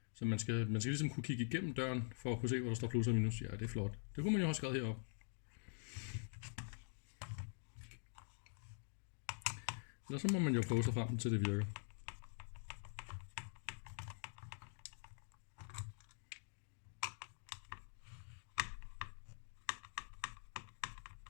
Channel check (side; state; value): right; silent; digital silence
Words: Så man skal ligesom kunne kigge igennem døren, for at kunne se, hvor der står plus og minus. Ja, det er flot. Det kunne man jo have skrevet heroppe. Eller så må man jo prøve sig frem til det virker.